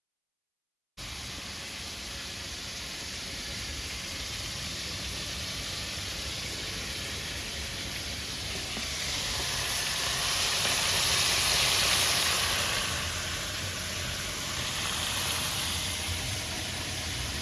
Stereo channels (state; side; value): identical; both; correlation 1.00